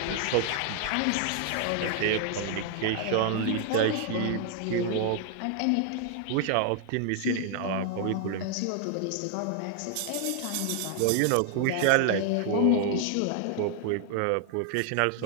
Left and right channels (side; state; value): both; different; correlation 0.00